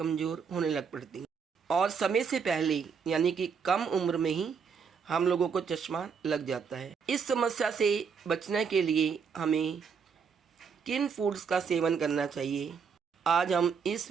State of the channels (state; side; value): quieter; left; 6.1 dB